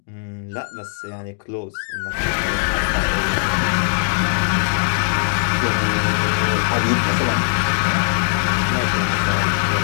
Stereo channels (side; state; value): right; silent; digital silence